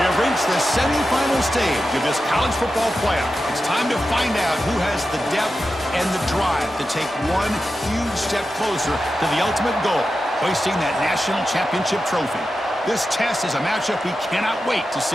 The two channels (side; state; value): both; normal; correlation 0.91